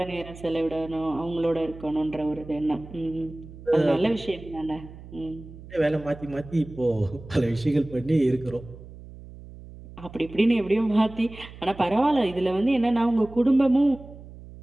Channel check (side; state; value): right; noise; hum, 16 dB below the sound